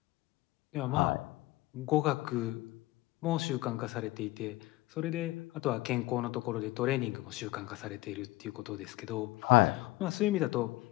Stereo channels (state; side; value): quieter; right; 19.4 dB